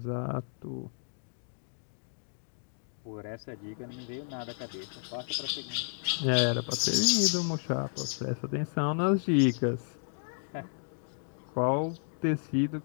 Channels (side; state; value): right; silent; 56 dB below the other